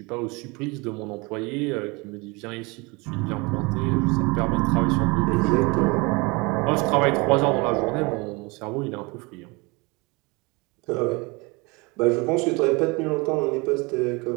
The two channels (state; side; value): quieter; left; 26.9 dB